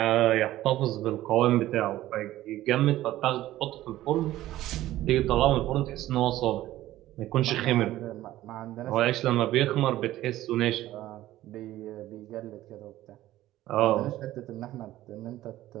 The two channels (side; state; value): left; quieter; 15.0 dB